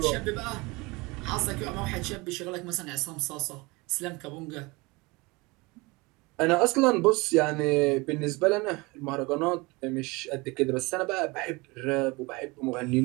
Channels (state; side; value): quieter; left; 24.8 dB